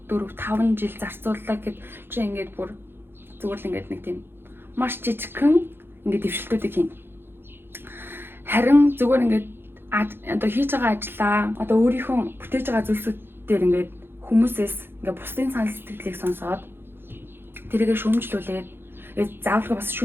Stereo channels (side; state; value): left; late; 0.10 ms